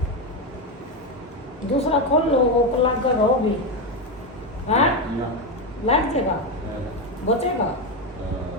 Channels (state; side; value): normal; both; correlation 0.11